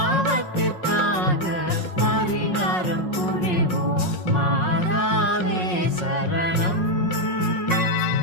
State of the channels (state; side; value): late; right; 5.5 ms